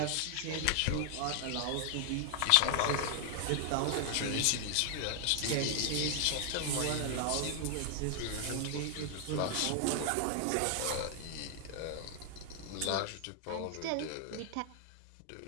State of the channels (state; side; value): different; both; correlation 0.00